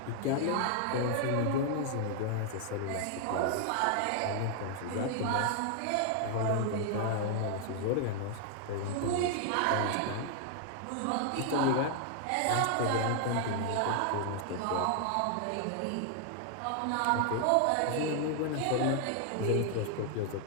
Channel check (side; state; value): both; different; correlation 0.00